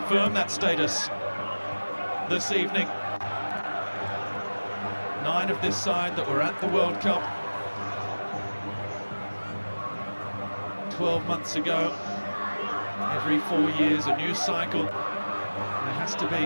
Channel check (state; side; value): inverted; both; correlation -1.00